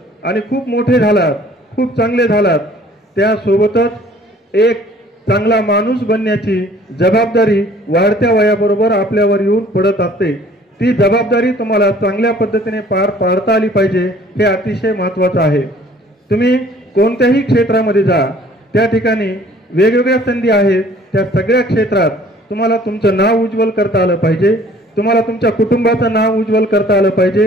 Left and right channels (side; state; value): both; normal; correlation 0.54